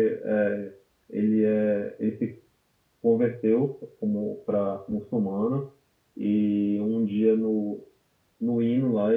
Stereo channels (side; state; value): both; identical; correlation 1.00